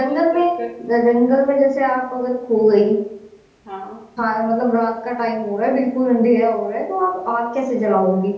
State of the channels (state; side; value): identical; both; correlation 1.00